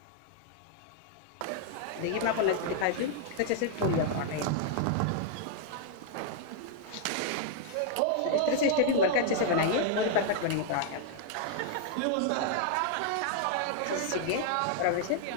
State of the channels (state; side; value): different; both; correlation 0.00